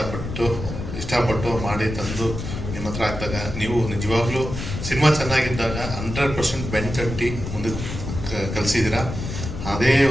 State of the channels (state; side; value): noise; left; rumble, 6 dB below the sound